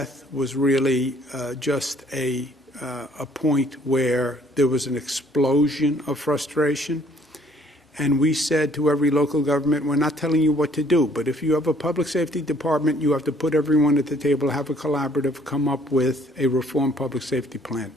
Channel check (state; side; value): normal; both; correlation 0.61